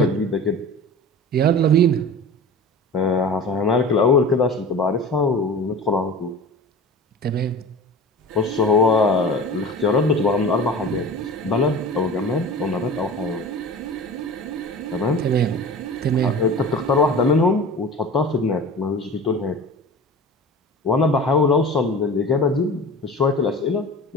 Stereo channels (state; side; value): normal; both; correlation 0.36